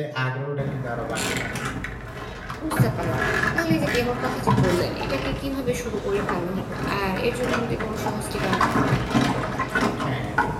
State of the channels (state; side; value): identical; both; correlation 1.00